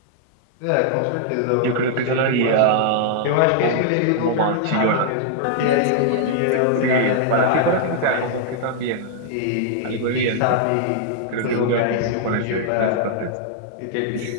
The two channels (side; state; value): both; different; correlation -0.01